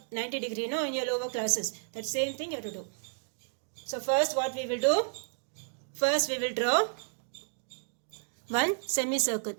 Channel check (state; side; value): silent; left; digital silence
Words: 90 degree in your lower classes. That same thing you have to do. So first what we will do? First we will draw one semicircle.